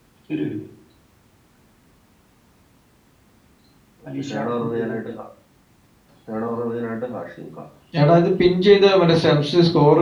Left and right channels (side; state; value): both; identical; correlation 1.00